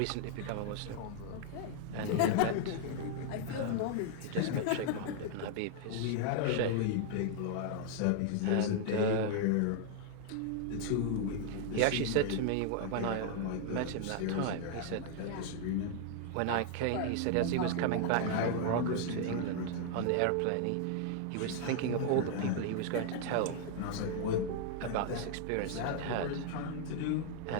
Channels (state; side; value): different; both; correlation 0.00